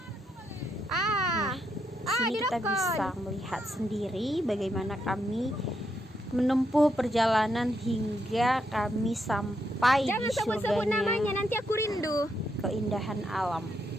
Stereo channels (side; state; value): both; normal; correlation 0.79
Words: Nah, sini kita bisa melihat sendiri bagaimana kami menempuh perjalanan hingga kami sampai di surganya. Namanya, nanti aku rindu. Keindahan alam.